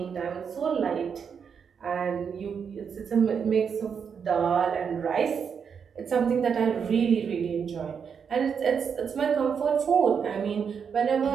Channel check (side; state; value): left; quieter; 6.8 dB